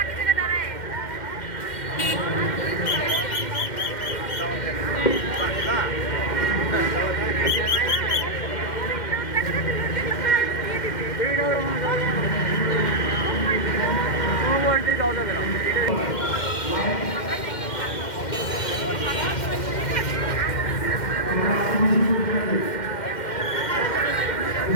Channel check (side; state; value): right; late; 2.1 ms